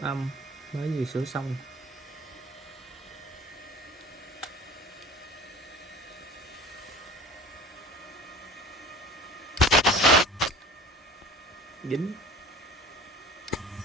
âm mới vừa sửa xong. Dính.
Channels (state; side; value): normal; both; correlation 0.43